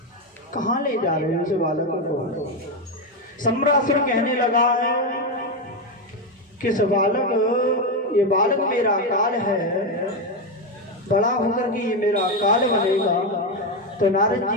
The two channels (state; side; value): normal; both; correlation 0.09